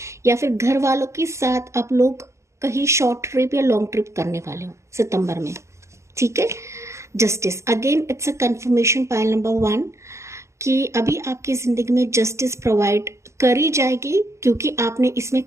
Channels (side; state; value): left; late; 0.13 ms